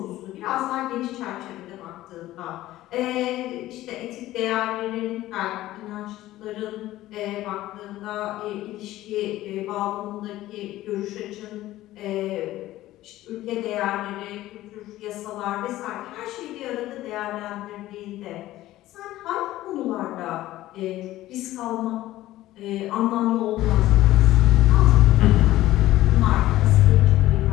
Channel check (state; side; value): quieter; right; 15.5 dB